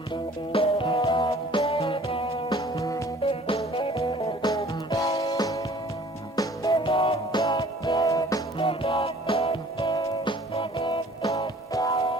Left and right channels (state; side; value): normal; both; correlation 0.52